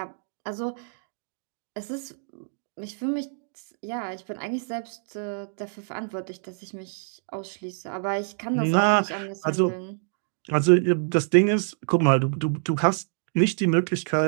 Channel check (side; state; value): left; silent; 61 dB below the other